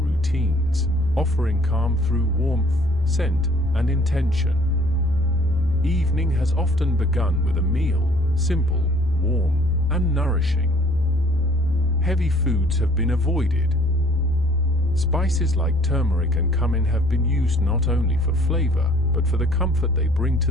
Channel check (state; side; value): normal; both; correlation 0.56